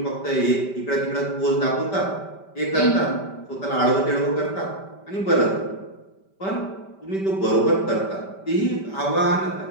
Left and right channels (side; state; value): right; late; 5.1 ms